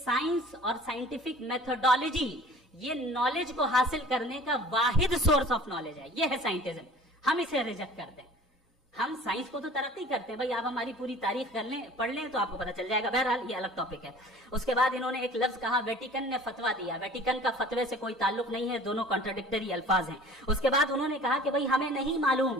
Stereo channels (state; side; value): normal; both; correlation 0.46